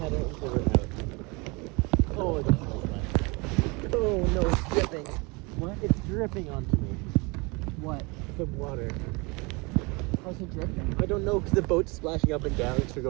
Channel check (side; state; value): left; quieter; 27.6 dB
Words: we're out. Oh, that's nice. Oh no, it's dripping. What? It's dripping onto me. What? The water. How's it dripping? I don't know because the boat's splashing up and down because we're